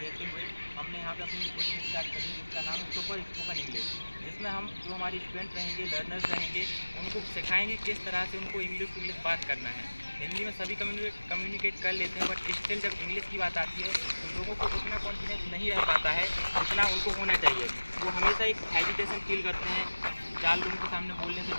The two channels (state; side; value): inverted; both; correlation -1.00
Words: हुए हमने यहाँ पे अपनी कोचिंग स्टार्ट करी जिसका नाम है सुपर स्पोकन इंग्लिश, जिसमें हम जो हमारे स्टूडेंट रहेंगे, लर्नर्स रहेंगे, उनको सिखाएंगे किस तरह से उनको इंग्लिश टू इंग्लिश बात करना है। हिंदी में सभी कम्युनिकेट कर लेते हैं, बट स्टिल जब इंग्लिश की बात आती है तो लोगों को उतना कॉन्फिडेंस नहीं रह पाता है जितना उनको होना चाहिए। वो हमेशा एक हेजिटेशन फील करते हैं, 4 लोगों के सामने बोलने से